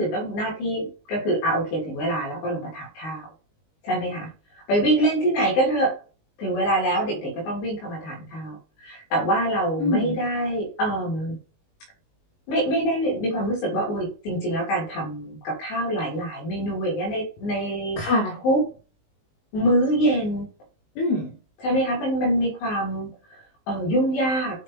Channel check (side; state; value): right; late; 19 ms